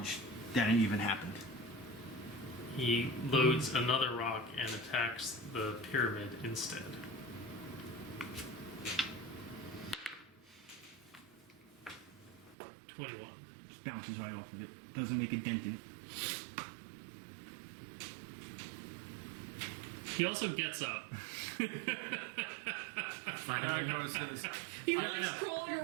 that it even happened. He loads another rock and attacks the pyramid instead. $21. Just bounces right off of it. Doesn't make a dent in it. He also gets up. Yago says, He No, likes no. crawling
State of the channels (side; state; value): left; drops out; at 12.6 s